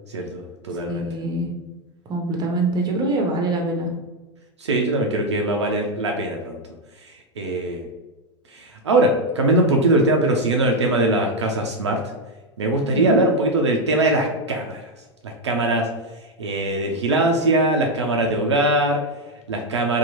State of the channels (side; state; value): both; normal; correlation 0.04